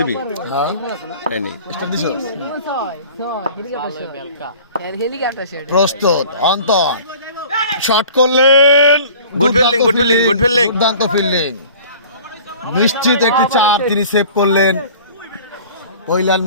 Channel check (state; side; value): inverted; both; correlation -0.45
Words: হ্যাঁ এই নেই স্টার্ট দিছো হেলিকপ্টার বেলকা হেলিকপ্টার সেট প্রস্তুত অন্তর শট করলেন, Good fielding, good fielding, good fielding. দুর্দান্ত ফিল্ডিং, নিশ্চিত একটি 4 তিনি সেভ করলেন। কৈলান